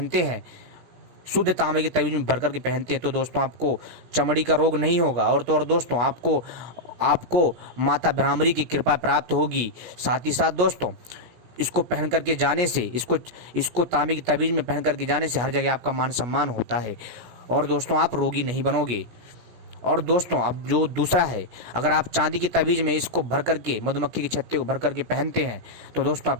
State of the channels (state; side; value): late; left; 17 ms